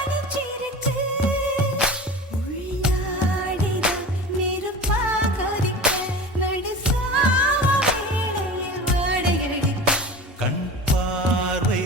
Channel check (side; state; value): both; normal; correlation 0.34